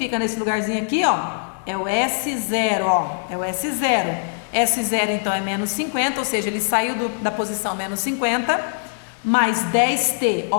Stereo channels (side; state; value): right; silent; digital silence